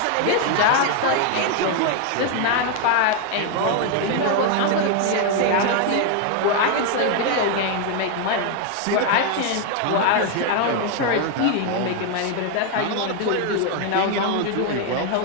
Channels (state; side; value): different; both; correlation 0.01